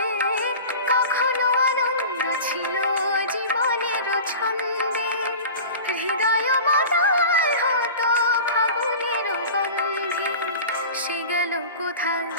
কখনো আনন্দ ছিল জীবনের ছন্দে হৃদয় মাতায় হতো ফাগুনের গন্ধে সে গেল কোথায়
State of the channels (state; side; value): inverted; both; correlation -0.36